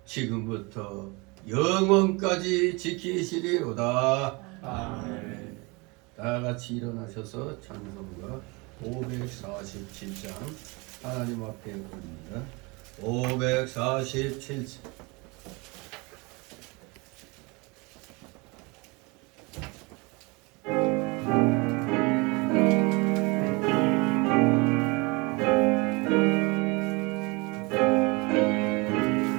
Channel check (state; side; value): quieter; left; 27.3 dB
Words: 지금부터 영원까지 지키시리로다. 아멘. 다 같이 일어나셔서 찬송가 547장 하나님 앞에 올립니다. 547장.